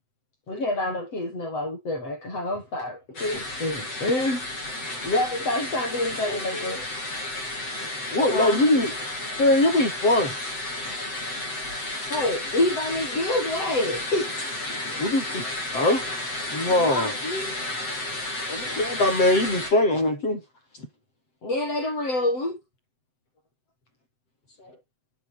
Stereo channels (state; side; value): late; right; 7.8 ms